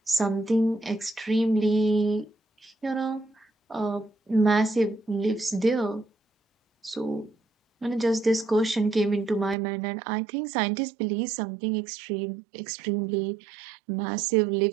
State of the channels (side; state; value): left; drops out; at 9.6 s